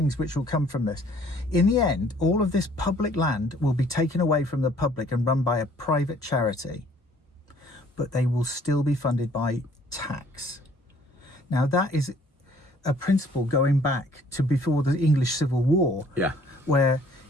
which will come from this. In the end, all of this public land will be taken away from the public and run by a private charity, but they will still be funded by tax. Now, that is a principle going back to before the English Civil War, where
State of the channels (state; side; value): normal; both; correlation 0.58